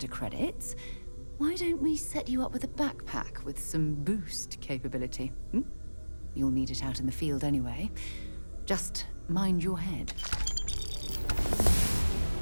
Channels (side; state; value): both; inverted; correlation -1.00